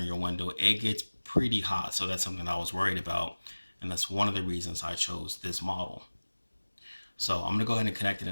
your window. It gets pretty hot, so that's something I was worried about, and that's one of the reasons I chose this model. So I'm gonna go ahead and connect it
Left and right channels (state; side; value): inverted; both; correlation -1.00